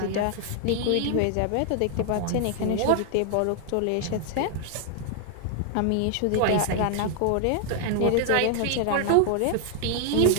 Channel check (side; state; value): both; different; correlation 0.00